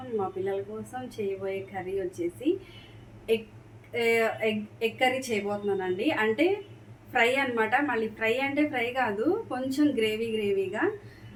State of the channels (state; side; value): identical; both; correlation 1.00